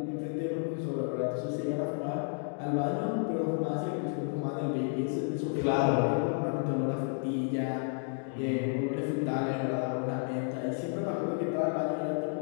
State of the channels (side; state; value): right; silent; 57 dB below the other